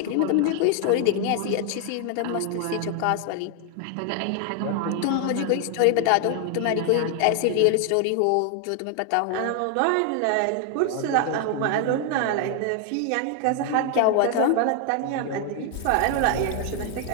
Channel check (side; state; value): both; different; correlation 0.00